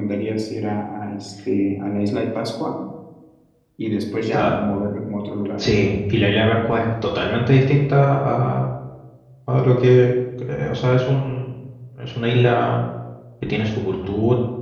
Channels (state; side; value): identical; both; correlation 1.00